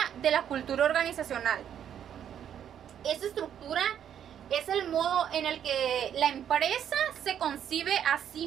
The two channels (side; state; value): left; quieter; 9.4 dB